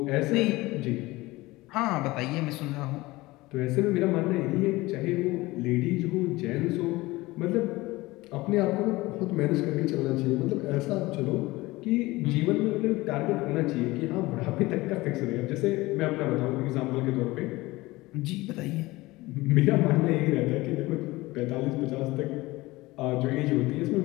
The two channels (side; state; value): right; quieter; 20.2 dB